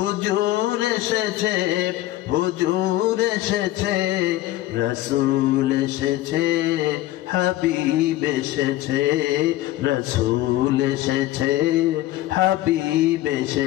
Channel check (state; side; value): quieter; right; 15.5 dB